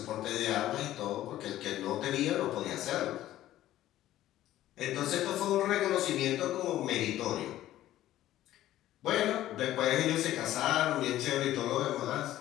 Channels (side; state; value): right; quieter; 13.9 dB